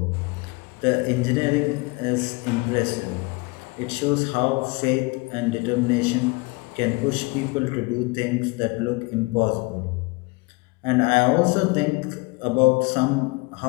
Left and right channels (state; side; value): quieter; right; 26.9 dB